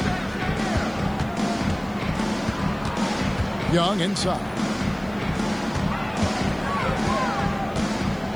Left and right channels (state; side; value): noise; right; hiss, 28 dB below the sound